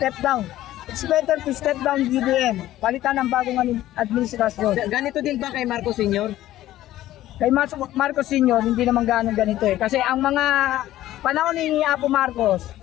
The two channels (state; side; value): quieter; right; 14.3 dB